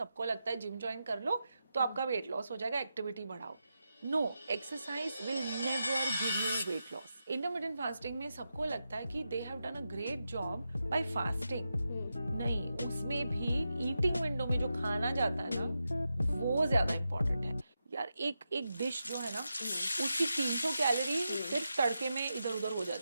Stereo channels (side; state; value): both; inverted; correlation -0.88